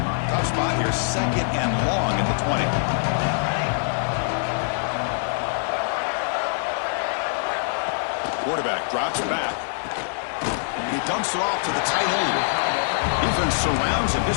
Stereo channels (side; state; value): right; silent; 58 dB below the other